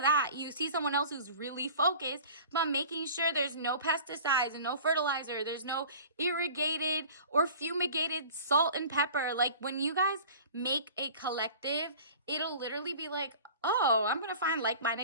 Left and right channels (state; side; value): inverted; both; correlation -0.42